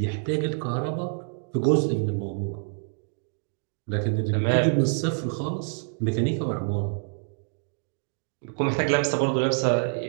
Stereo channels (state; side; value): silent; left; 60 dB below the other